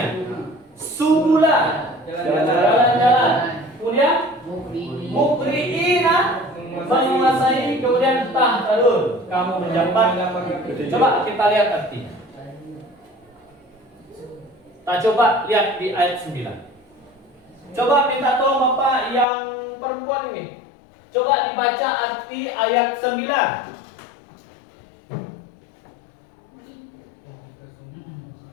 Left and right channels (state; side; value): drops out; right; at 19.2 s